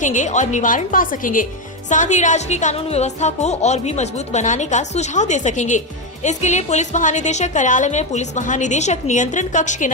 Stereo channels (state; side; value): normal; both; correlation 0.08